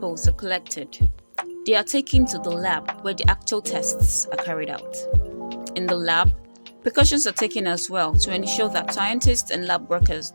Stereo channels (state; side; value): inverted; both; correlation -1.00